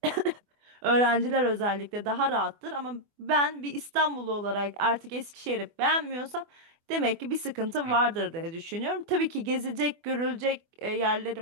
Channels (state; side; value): late; left; 24 ms